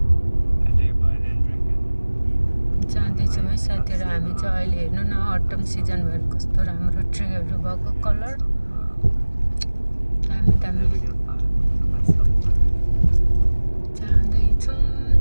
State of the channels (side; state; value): both; inverted; correlation -1.00